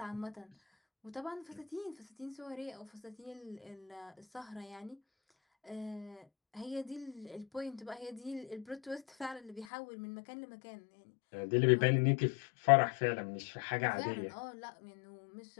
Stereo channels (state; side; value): drops out; right; at 9.7 s